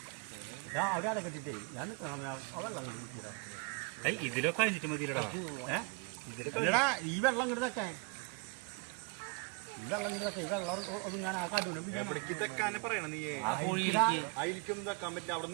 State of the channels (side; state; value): left; quieter; 31.5 dB